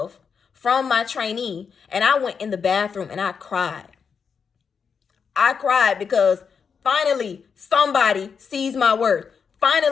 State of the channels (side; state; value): right; quieter; 6.2 dB